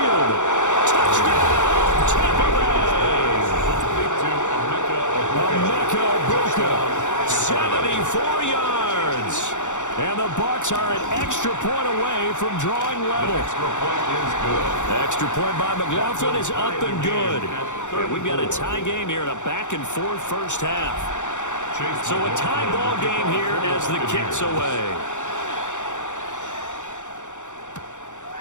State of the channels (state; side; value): late; right; 0.85 ms